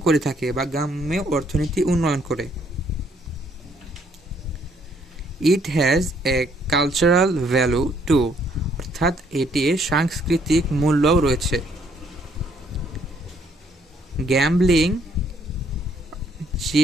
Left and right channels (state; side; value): normal; both; correlation 0.67